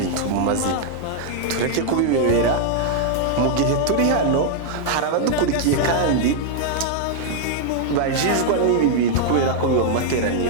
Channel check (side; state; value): both; different; correlation 0.00